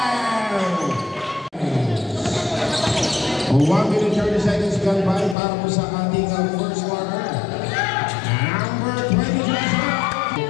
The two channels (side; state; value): right; drops out; at 5.4 s